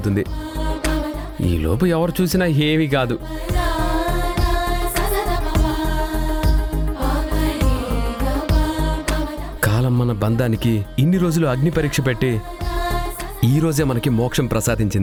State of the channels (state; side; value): identical; both; correlation 1.00